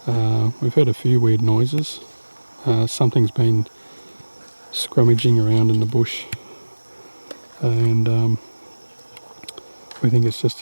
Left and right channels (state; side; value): inverted; both; correlation -1.00